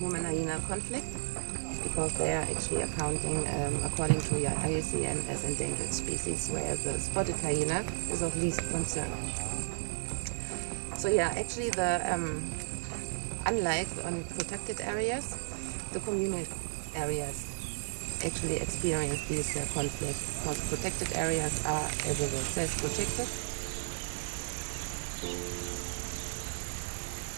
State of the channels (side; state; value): left; silent; digital silence